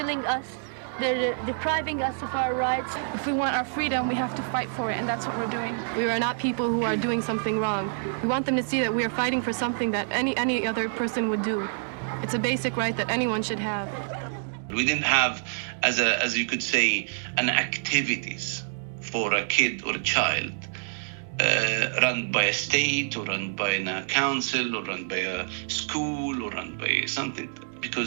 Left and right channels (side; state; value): left; silent; digital silence